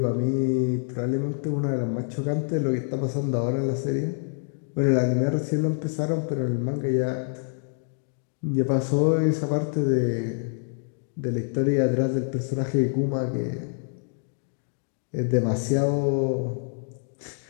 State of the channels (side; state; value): right; silent; digital silence